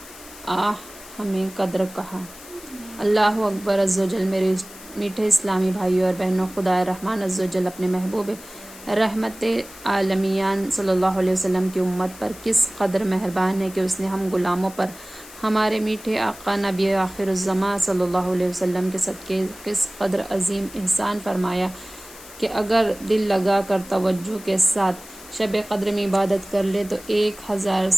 ہمیں قدر کہا۔ اللہ اکبر عز و جل۔ میرے میٹھے اسلامی بھائیوں اور بہنوں، خدائے رحمان عز و جل اپنے محبوب رحمت عالمیان صلی اللہ علیہ وسلم کی امت پر کس قدر مہربان ہے کہ اس نے ہم غلاموں پر ہمارے میٹھے آقا نبی آخر الزماں صلی اللہ علیہ وسلم کے صدقے کس قدر عظیم احسان فرمایا کہ اگر دل لگا کر توجہ کے ساتھ شب قدر میں عبادت کر لے تو 1000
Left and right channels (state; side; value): noise; left; hiss, 18 dB below the sound